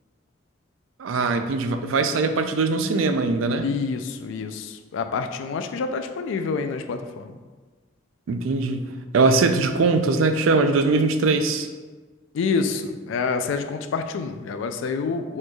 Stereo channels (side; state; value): both; normal; correlation 0.13